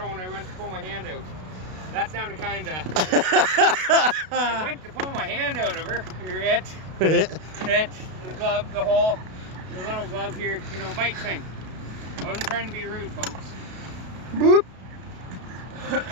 when I went to pull my hand out. That sounded kind of... I went to pull my hand out of her. The glove, the little glove here, you know, bite thing. I wasn't trying to be rude, folks. Boop.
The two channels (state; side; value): late; left; 32 ms